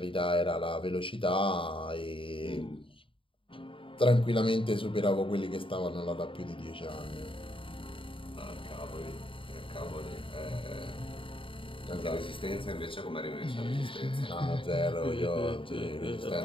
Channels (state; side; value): late; right; 0.25 ms